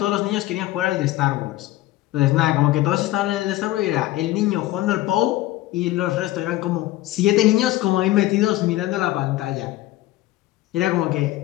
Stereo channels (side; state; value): right; quieter; 16.3 dB